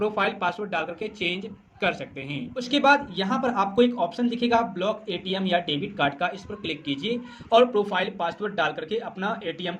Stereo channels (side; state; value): both; identical; correlation 1.00